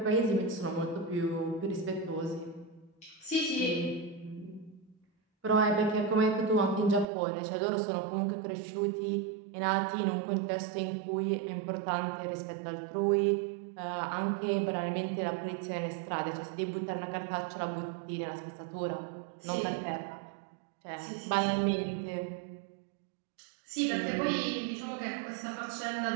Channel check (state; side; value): drops out; left; at 7.1 s